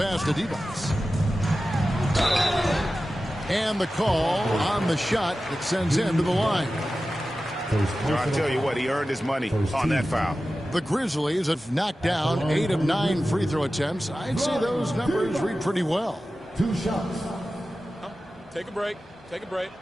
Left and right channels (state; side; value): normal; both; correlation 0.94